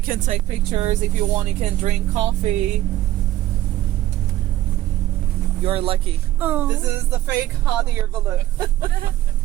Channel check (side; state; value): left; quieter; 14.3 dB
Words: can take pictures if you want. You can drink coffee. You're lucky. Oh. This is the fake hot air balloon.